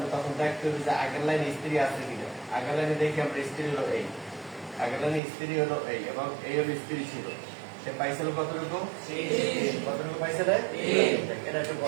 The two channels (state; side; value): drops out; left; at 5.2 s